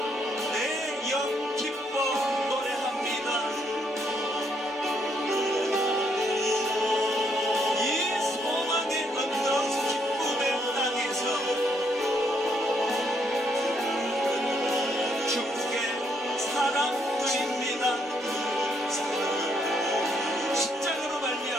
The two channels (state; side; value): normal; both; correlation 0.73